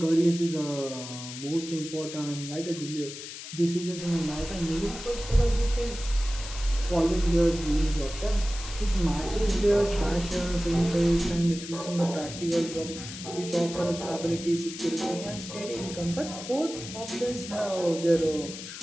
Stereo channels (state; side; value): noise; left; hiss, 11 dB below the sound